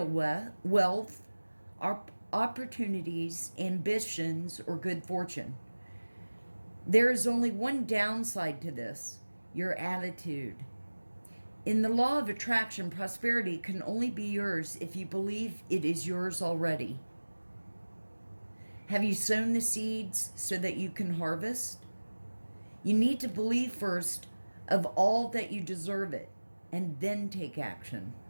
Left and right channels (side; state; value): both; inverted; correlation -1.00